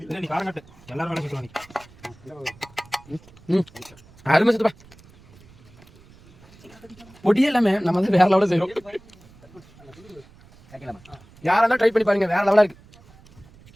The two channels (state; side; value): noise; right; rumble, 25 dB below the sound